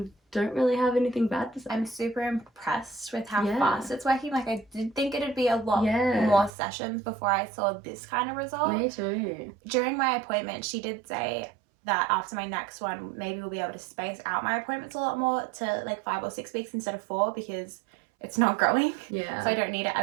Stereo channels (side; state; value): left; drops out; at 6.5 s